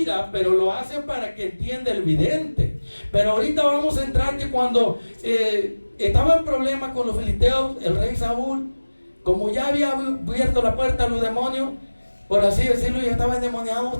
pero lo hacen para que entienda el vidente. Pero ahorita vamos a entrar que cuando estaba en problema con los filisteos, el rey Saúl, como ya había abierto la puerta a los demonios, por así decirlo, ya estaba endemoniado,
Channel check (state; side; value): inverted; both; correlation -1.00